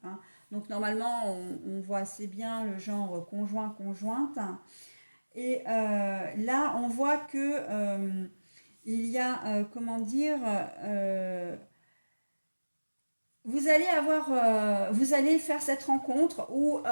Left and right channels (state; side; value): inverted; both; correlation -1.00